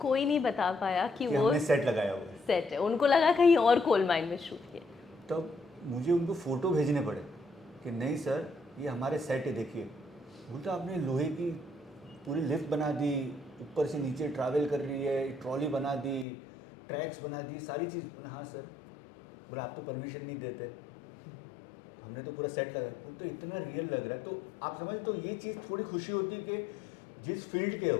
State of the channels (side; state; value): right; drops out; at 16.2 s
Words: नहीं बता पाया कि वो हमने सेट लगाया हुआ है. सेट है, उनको लगा कहीं और कोल माइन में शूट किया. तब मुझे उनको फ़ोटो भेजने पड़े कि नहीं सर ये हमारे सेट है, देखिए. बोलता आपने लोहे की पूरी लिफ्ट बना दी, ऊपर से नीचे ट्रैवल कर रही है, ट्रॉली बना दी, ट्रैक्स बना दी, सारी चीज़. बोला हाँ सर. बोला आप तो परमिशन नहीं देते, हमने तो पूरा सेट लगाया. वो तो इतना रियल लग रहा है. तो आप समझ, तो ये चीज़ थोड़ी खुशी होती है कि जिस फील्ड के